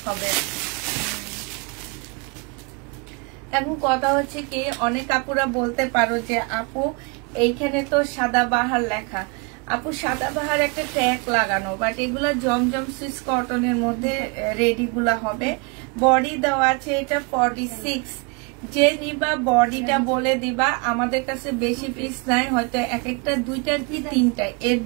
হবে। এখন কথা হচ্ছে কি, অনেক আপুরা বলতে পারো যে আপু এইখানে তো সাদাবাহার লেখা। আপু সাদাবাহার একটা ট্যাগ লাগানো, বাট এগুলা জমজম সুইস কটনের মধ্যে রেডি গুলা হবে। বডি দেওয়া আছে এটা 46। যে নিবা বডিটা বলে দিবা, আমাদের কাছে বেশি পিস নাই, হয়তো এক একটা 2টা কি 3টা, এর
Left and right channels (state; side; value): quieter; left; 31.2 dB